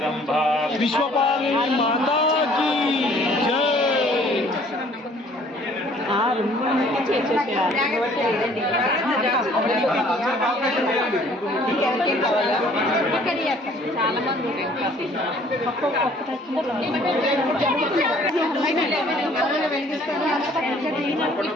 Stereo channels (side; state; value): both; normal; correlation 0.57